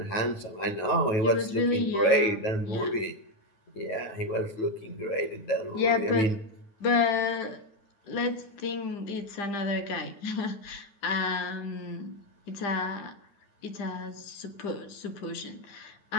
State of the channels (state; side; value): late; right; 9.3 ms